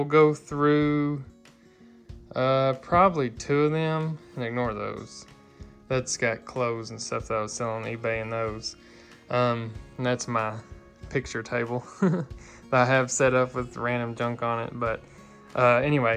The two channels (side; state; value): both; identical; correlation 1.00